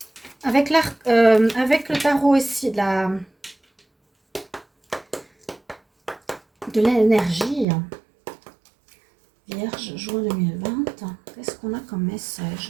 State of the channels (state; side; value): drops out; left; at 7.7 s